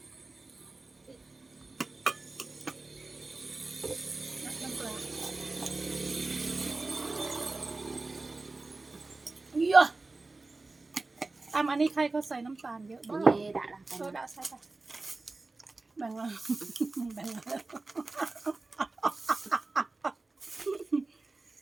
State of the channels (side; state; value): left; quieter; 3.4 dB